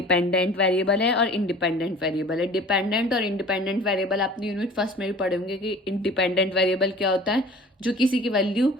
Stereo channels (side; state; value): both; normal; correlation 0.45